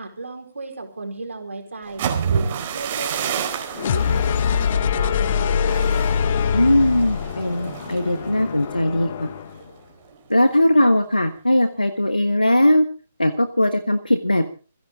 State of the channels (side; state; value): both; inverted; correlation -0.89